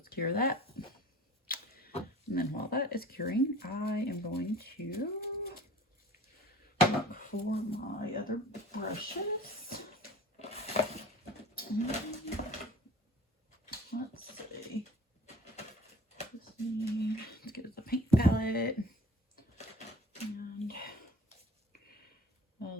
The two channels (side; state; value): both; normal; correlation 0.45